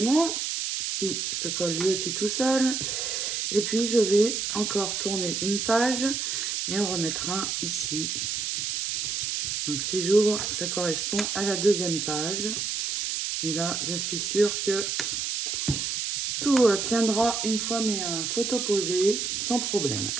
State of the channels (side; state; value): right; noise; hiss, 1 dB below the sound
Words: qui se colle lui aussi tout seul. Et puis, je vais encore tourner une page et en remettre un ici. Donc, si j'ouvre, ça correspond à la deuxième page. Et là, je suis sûre que tout tiendra une fois mes photos posées sans problème.